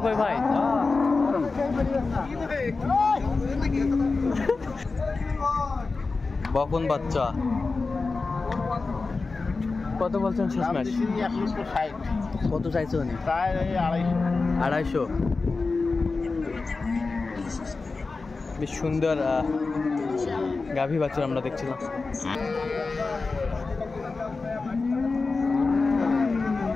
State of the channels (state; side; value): quieter; right; 4.0 dB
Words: কই ভাই? বকন বাচ্চা। কত বলছেন শেষ ম্যাচ? 1,60,000। কত চাইছে উনি? তাই 250। 250। বেশ সুন্দর গাভী বাচ্চা আমরা দেখছিলাম।